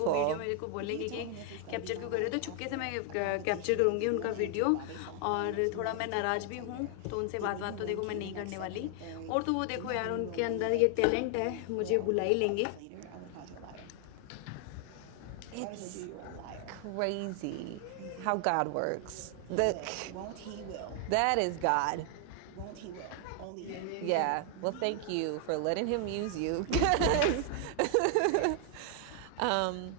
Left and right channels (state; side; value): different; both; correlation 0.00